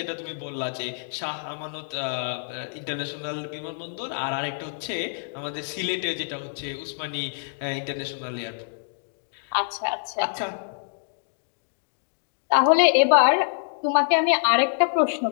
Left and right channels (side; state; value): right; silent; digital silence